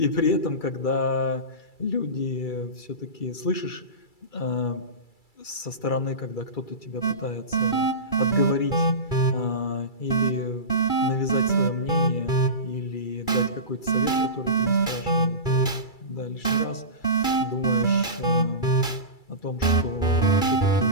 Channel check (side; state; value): right; late; 2.3 ms